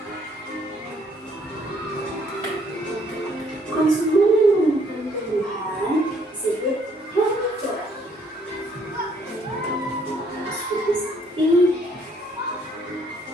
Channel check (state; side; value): normal; both; correlation 0.65